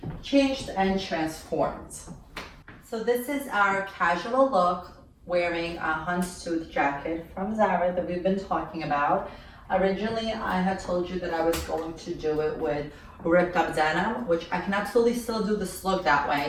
changed and transformed. So this is our casual look wearing a houndstooth jacket from Zara that we've been talking about. Originally, I had told you that I was going to do it with ripped up denim, which I can absolutely still do this look that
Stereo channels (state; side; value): identical; both; correlation 1.00